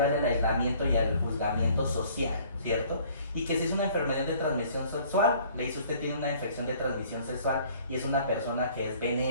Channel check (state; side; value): inverted; both; correlation -0.56